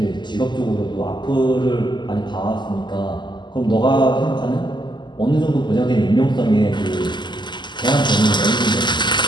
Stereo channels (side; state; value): right; late; 0.21 ms